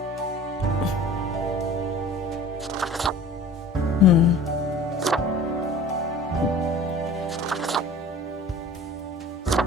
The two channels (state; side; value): normal; both; correlation 0.43